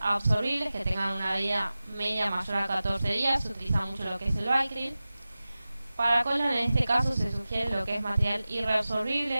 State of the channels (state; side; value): inverted; both; correlation -0.96